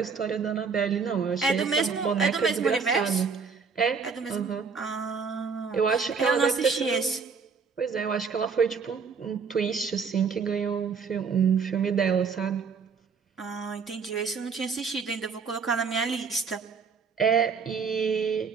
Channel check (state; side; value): quieter; left; 5.6 dB